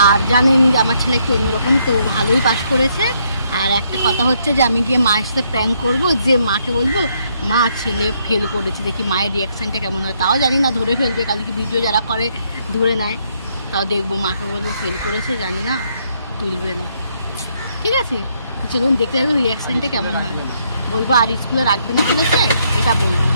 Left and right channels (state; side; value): inverted; both; correlation -0.72